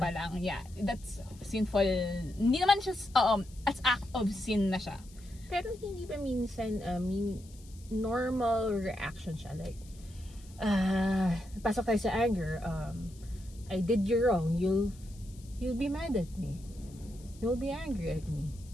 lang. Yeah, that's sinful. Hindi naman siya, as act of sin na siya. Pero hindi ba minsan, normal reaction siya? Like, pasok tayo sa anger, I did you wrong, you'll be mad at me. You'll be angry at me.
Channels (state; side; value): noise; left; hiss, 24 dB below the sound